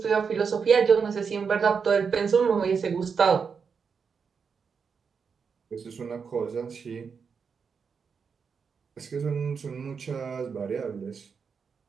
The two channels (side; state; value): left; quieter; 5.9 dB